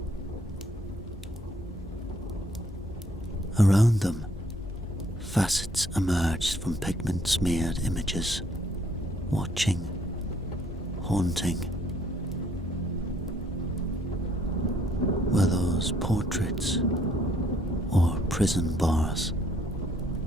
Around them, facets emerged from pigment-smeared images, watching, haunting. Were those portraits or prison bars?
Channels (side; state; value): both; normal; correlation 0.66